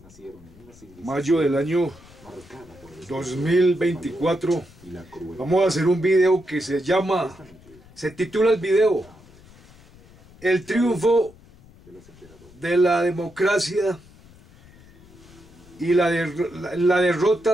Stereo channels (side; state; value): left; noise; rumble, 24 dB below the sound